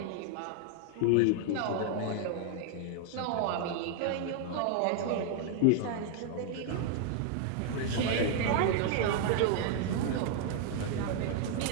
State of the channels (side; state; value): both; different; correlation 0.00